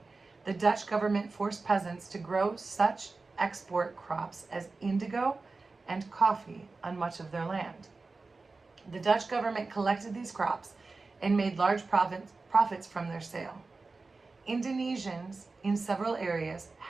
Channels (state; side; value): quieter; left; 3.8 dB